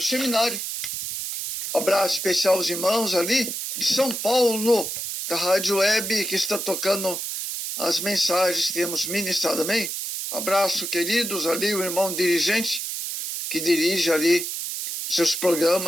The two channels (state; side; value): noise; right; hiss, 4 dB below the sound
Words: seminário. Abraço especial aos irmãos ali de São Paulo, da Rádio Web, que está tocando as mensagens que temos ministrado, amém? Abraço, queridos, ali o irmão dirigente, que dirige ali seus